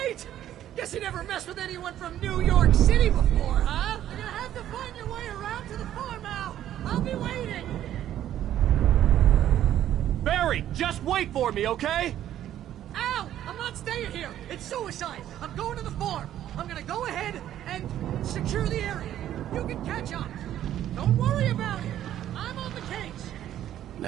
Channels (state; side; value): quieter; left; 11.7 dB